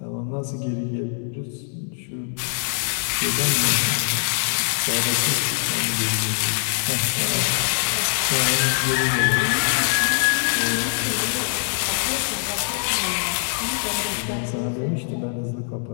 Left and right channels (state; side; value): silent; right; digital silence